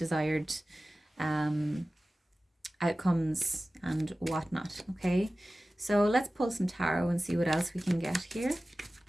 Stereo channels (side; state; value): both; normal; correlation 0.96